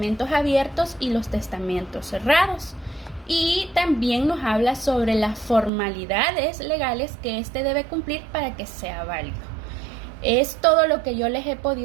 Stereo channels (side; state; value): left; drops out; at 5.7 s